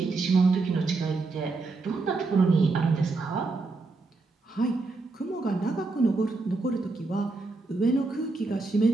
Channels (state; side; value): quieter; left; 3.6 dB